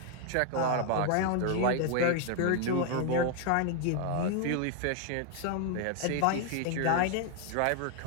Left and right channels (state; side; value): different; both; correlation 0.00